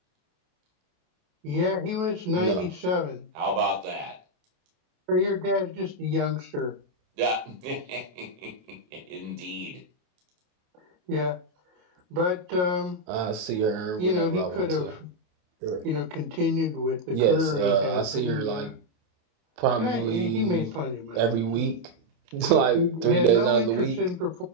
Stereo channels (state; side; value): late; left; 28 ms